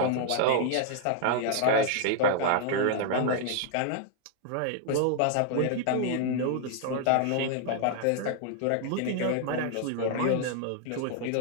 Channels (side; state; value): both; different; correlation -0.01